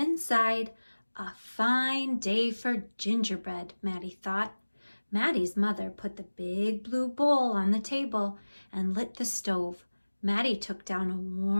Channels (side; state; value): both; inverted; correlation -1.00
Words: A fine day for gingerbread, Maddie thought. Maddie's mother put the big blue bowl on the table and lit the stove. Maddie took down a